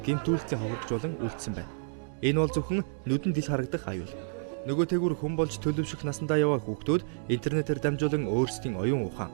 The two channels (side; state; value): left; silent; digital silence